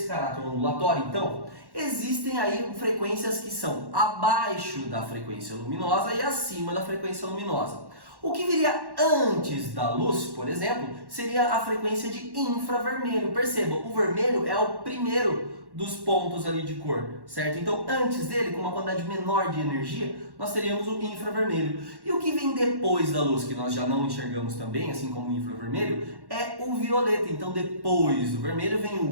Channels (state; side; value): late; left; 1.1 ms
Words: caráter ondulatório, então, existem aí frequências que são abaixo da frequência luminosa e acima da frequência luminosa. O que viria antes da luz, por exemplo, seria a frequência de infravermelho. Perceba, o vermelho é o primeiro dos pontos ali de cor, certo? Então, antes dele, com uma quantidade menor de energia, nós teríamos o infravermelho. E o que vem depois da luz, que nós já não enxergamos também, assim como o infravermelho, é o violeta. Então, depois do vermelho vem